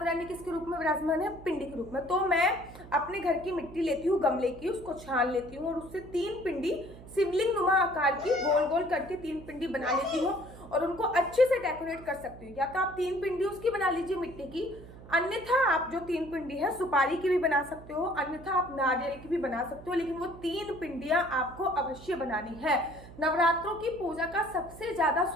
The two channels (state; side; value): noise; right; hum, 17 dB below the sound